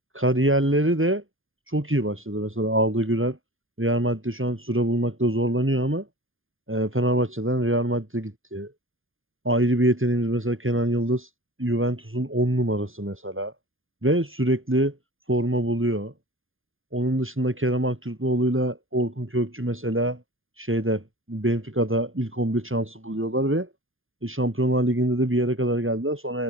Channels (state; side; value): late; left; 0.59 ms